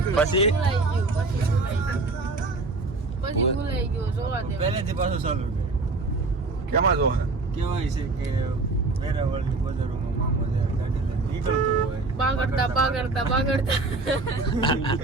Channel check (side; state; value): left; quieter; 3.5 dB